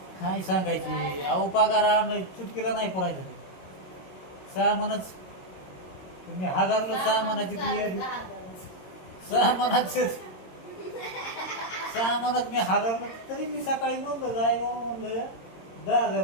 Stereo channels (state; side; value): late; right; 22 ms